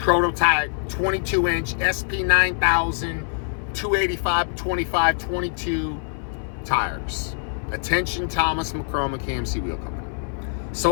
22-inch SP9000 285/25 22 tires. Attention, Thomas McCormick KMC Wheel Company.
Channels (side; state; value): right; silent; 62 dB below the other